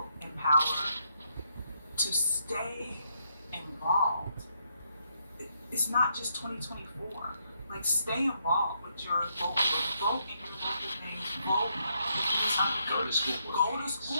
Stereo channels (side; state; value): both; inverted; correlation -0.76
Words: in power, to stay involved. It's not just 2024. Like, stay involved with your local, vote in your local things, vote. Go to school. Go to